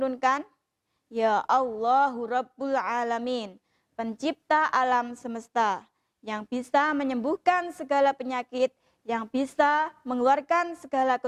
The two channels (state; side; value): identical; both; correlation 1.00